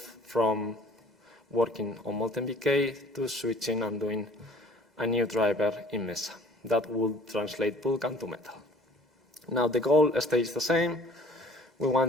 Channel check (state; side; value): normal; both; correlation 0.51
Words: from working on MoltenBK to switching and doing a new driver in Mesa that will translate Vulkan to Metal. Now the goal stays the same. We